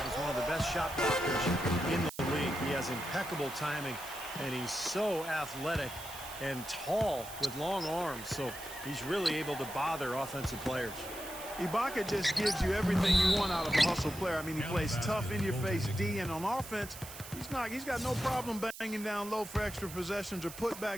as one of the best shot blockers in the league. He has impeccable timing, and he's so athletic and tall with long arms, so he's really able to bother offensive players. Ibaka just gives you everything you want out of a hustle player. I mean, he plays tough, in-your-face D, and on offense, he's got no problem banging down low for extra possessions or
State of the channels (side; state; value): right; noise; hiss, 13 dB below the sound